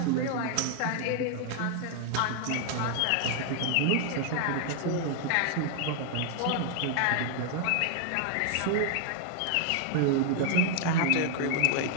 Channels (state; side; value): different; both; correlation 0.00